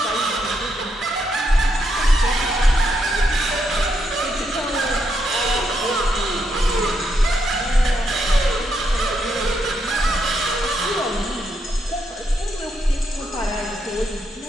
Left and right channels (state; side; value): normal; both; correlation 0.79